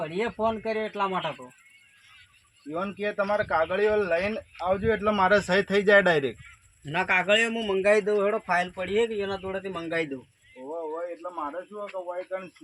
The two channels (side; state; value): both; identical; correlation 1.00